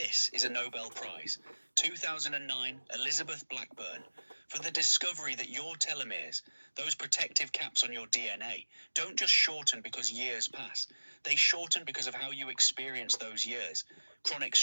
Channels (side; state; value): both; inverted; correlation -1.00